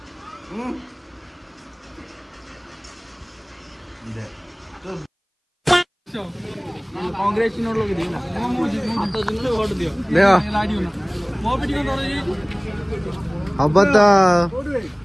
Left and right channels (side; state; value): both; identical; correlation 1.00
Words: कांग्रेस नोट लोग दिना हाथ जिनले वोट दियो देखो लाडियो ना मो बेटी को नोट अब तो